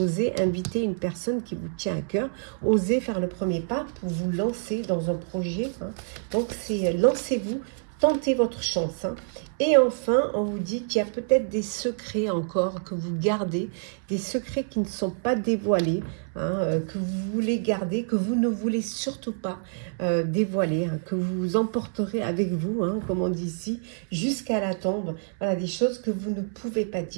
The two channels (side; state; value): left; silent; 60 dB below the other